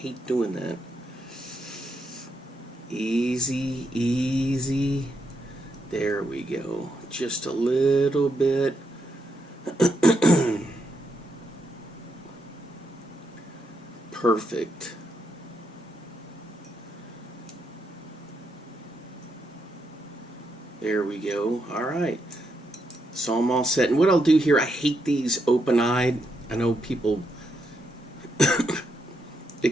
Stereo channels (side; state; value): both; normal; correlation 0.80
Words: doing that. Easy, easy. There we go. Just a little bit. Perfect. There we go. All right. So I'm all set. And what I'll do here, I hate these open-eyed. I know people...